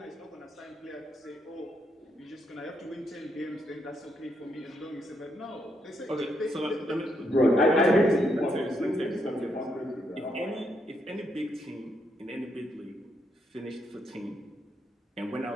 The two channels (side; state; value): both; normal; correlation 0.77